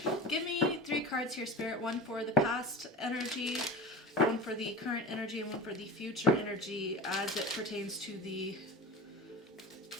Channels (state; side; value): normal; both; correlation 0.31